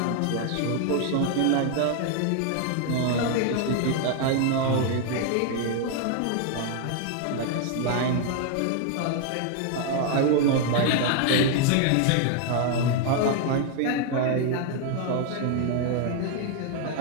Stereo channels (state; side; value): different; both; correlation 0.00